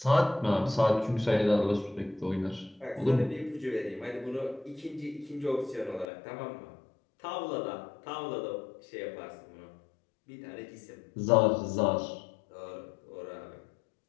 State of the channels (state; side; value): drops out; right; at 6.1 s